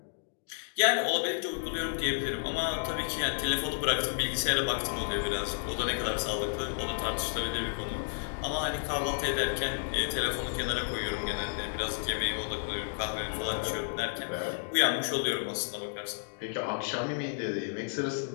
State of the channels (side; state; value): right; silent; digital silence